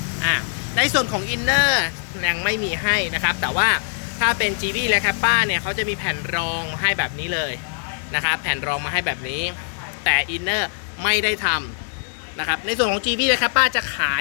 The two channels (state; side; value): silent; right; digital silence